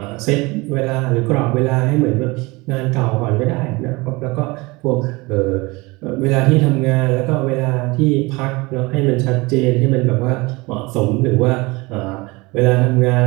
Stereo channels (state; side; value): quieter; left; 24.0 dB